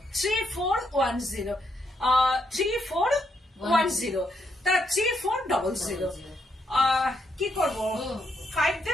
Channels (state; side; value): normal; both; correlation 0.77